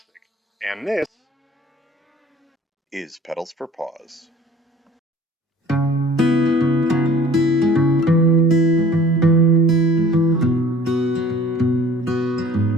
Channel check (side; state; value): both; normal; correlation 0.51